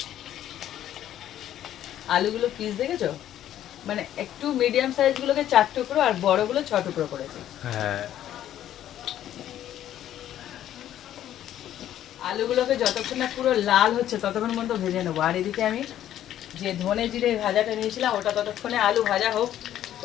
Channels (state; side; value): quieter; right; 11.7 dB